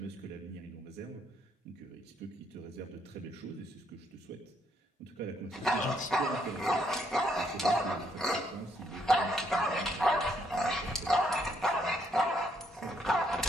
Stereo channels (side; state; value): both; normal; correlation 0.72